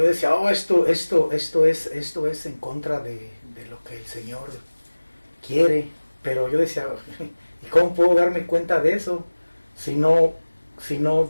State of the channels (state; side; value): inverted; both; correlation -1.00